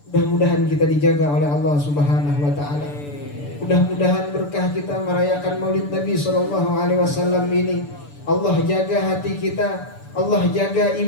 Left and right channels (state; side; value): late; right; 6.9 ms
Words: Mudah-mudahan kita dijaga oleh Allah Subhanahu wa taala. Mudah-mudahan berkah kita merayakan Maulid Nabi SAW ini. Allah jaga hati kita, Allah jaga